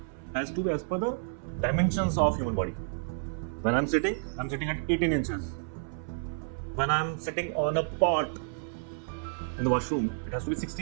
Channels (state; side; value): silent; left; 58 dB below the other